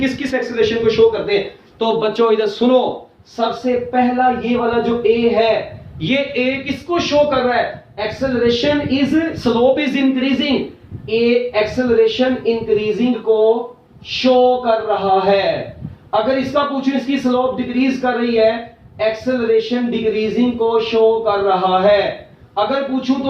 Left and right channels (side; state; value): both; identical; correlation 1.00